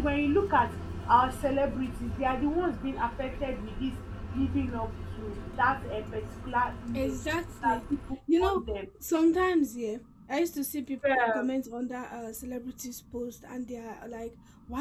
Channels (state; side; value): identical; both; correlation 1.00